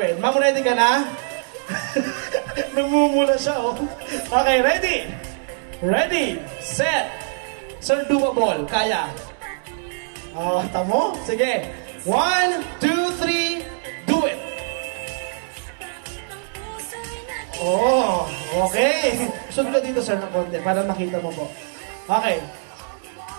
Ma'am, ready ka na? Namumula siya, oh. Okay, ready? Ready, set. Sir, doable. Kaya. Tamo? Sige. 1, 2, 3, do it. Okay. Sunod ka dito, sir, ng konti para makita mo po. Okay.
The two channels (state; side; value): silent; left; digital silence